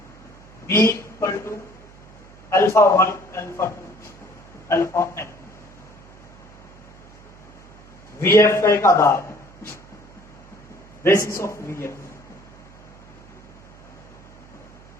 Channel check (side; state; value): right; noise; hum, 23 dB below the sound